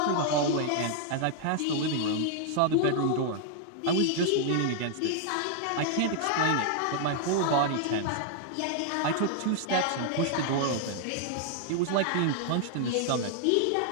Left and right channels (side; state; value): both; different; correlation 0.00